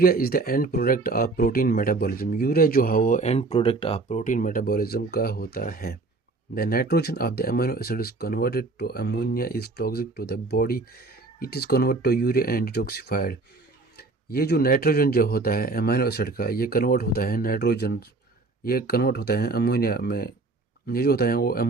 is the end product of protein metabolism. Urea जो है वो end product of protein metabolism का होता है। The nitrogen of the amino acid is converted to ammonia is toxic to the body. It is convert to urea and detoxified. ये जो नाइट्रोजन जो होता है अमीनो एसिड का, ये कन्वर्ट होता है नाइट्रोजन, ये कन्वर्ट होता है अमोनिया में। ये जो होता है वो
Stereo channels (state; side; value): quieter; left; 3.5 dB